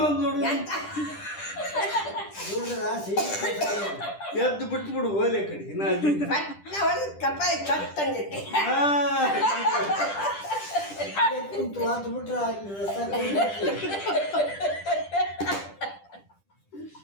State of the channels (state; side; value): late; right; 10 ms